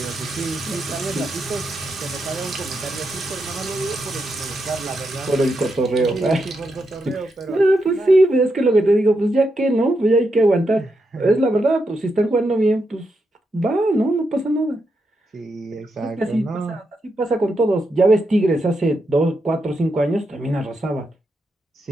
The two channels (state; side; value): normal; both; correlation 0.84